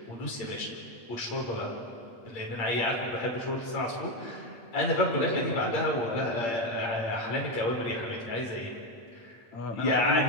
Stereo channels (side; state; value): right; late; 8.7 ms